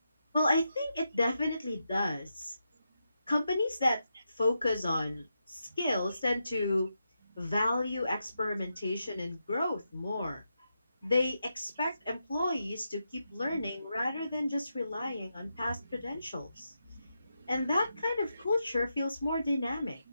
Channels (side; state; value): both; inverted; correlation -0.86